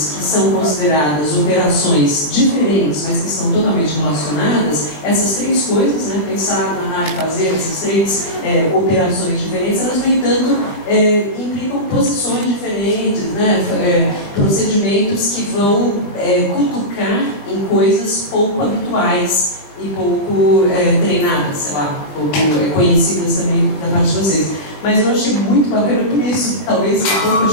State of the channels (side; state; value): right; late; 20 ms